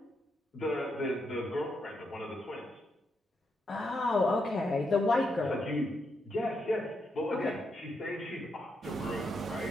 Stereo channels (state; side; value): normal; both; correlation 0.81